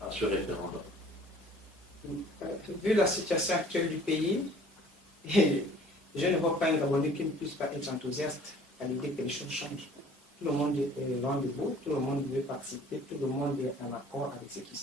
à ce référendum? Vu la situation actuelle du pays, je ne vois pas un Gabonais qui ne puisse pas être enthousiaste à l'idée que les choses changent. Tout le monde est rendez-vous, tout le monde veut participer, tout le monde est en accord avec ce qui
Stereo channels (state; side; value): normal; both; correlation 0.52